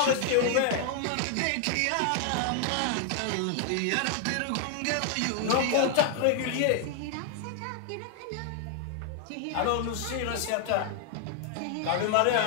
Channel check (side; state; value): both; different; correlation 0.00